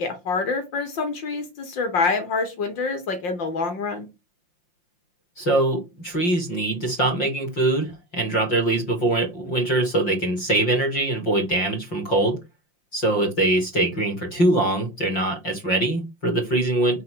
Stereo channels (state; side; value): late; right; 5.7 ms